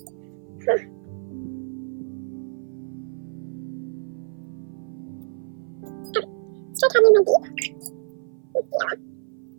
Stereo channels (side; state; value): left; silent; 56 dB below the other